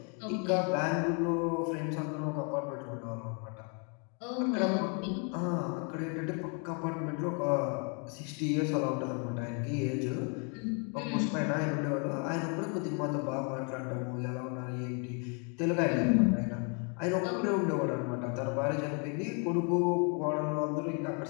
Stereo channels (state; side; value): quieter; right; 37.4 dB